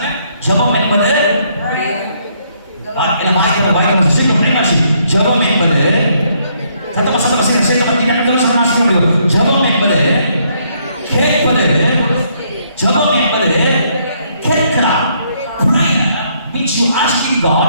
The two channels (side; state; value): both; inverted; correlation -0.70